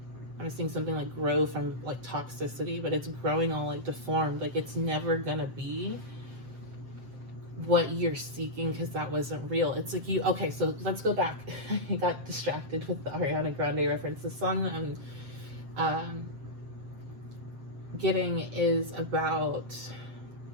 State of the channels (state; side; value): late; left; 7.6 ms